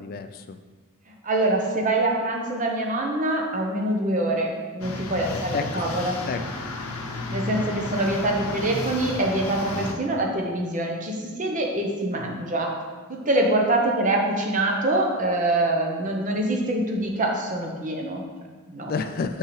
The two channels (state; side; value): normal; both; correlation 0.15